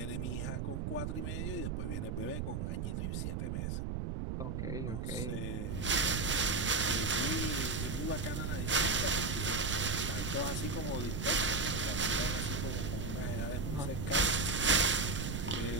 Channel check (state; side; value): noise; right; rumble, 2 dB below the sound